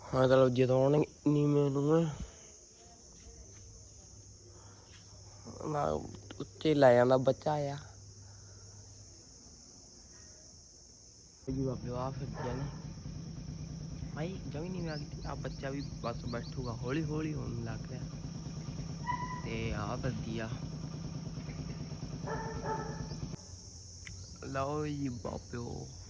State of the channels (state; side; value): identical; both; correlation 1.00